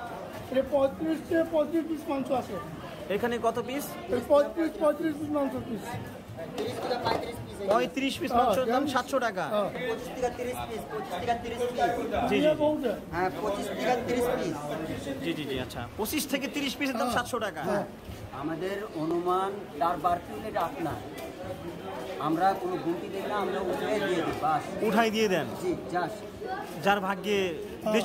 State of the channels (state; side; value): identical; both; correlation 1.00